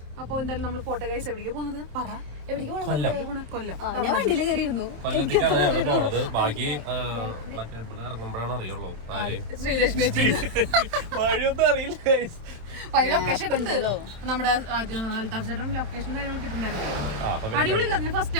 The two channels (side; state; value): left; late; 27 ms